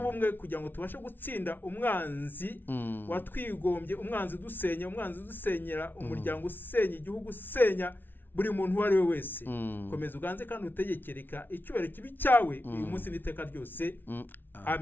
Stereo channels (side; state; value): right; late; 0.095 ms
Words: kugira ngo tubashe gutsinda umwanzi watwigombye, umwanzi dusenya, umwanzi dusenyera umuryango, usenya igihugu, usenya buri muntu uwo ari we wese. Komeza uganze kandi utegekereka icyubahiro kibi cyawe uyu munsi n'iteka ryose.